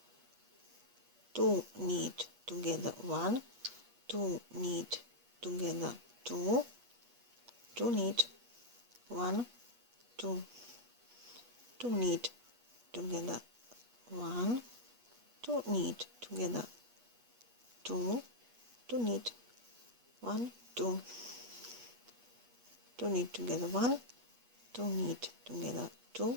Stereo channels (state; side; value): late; left; 8.3 ms